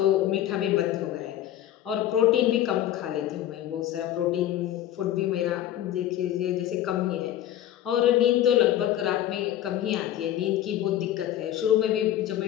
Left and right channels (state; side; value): quieter; right; 12.2 dB